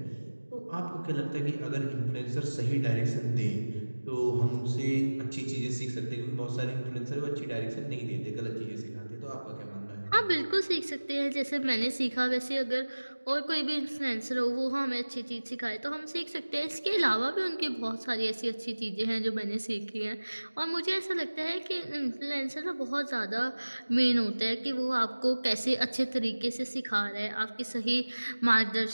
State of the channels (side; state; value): both; inverted; correlation -1.00